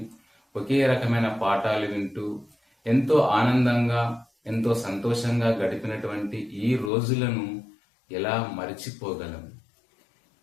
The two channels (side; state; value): right; drops out; at 6.9 s